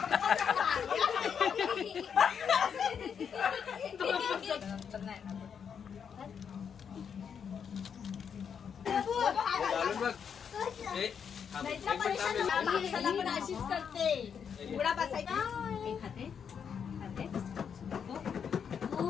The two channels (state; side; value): quieter; right; 7.2 dB